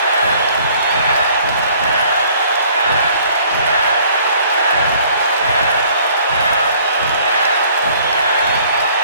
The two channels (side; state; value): both; inverted; correlation -0.57